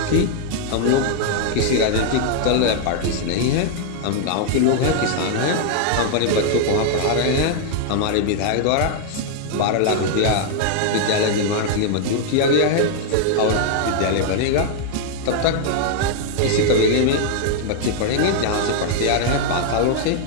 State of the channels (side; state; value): both; different; correlation 0.00